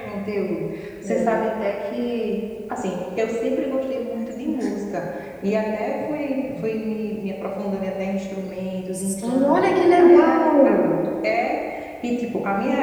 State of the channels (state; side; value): identical; both; correlation 1.00